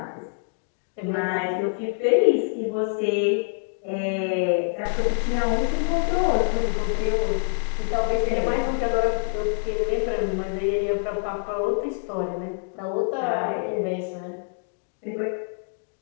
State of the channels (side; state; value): right; silent; digital silence